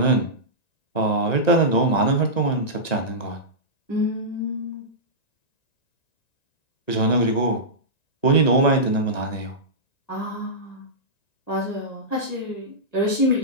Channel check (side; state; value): right; late; 1.9 ms